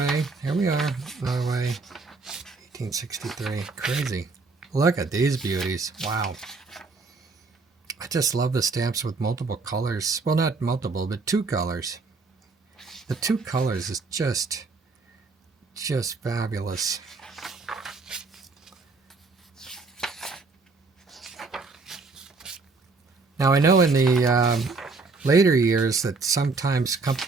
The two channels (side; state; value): left; quieter; 4.0 dB